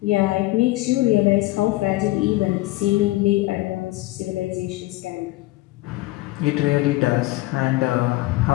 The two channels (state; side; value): quieter; right; 19.1 dB